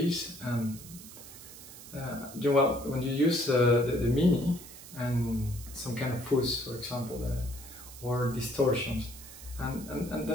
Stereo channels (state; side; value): noise; right; hiss, 16 dB below the sound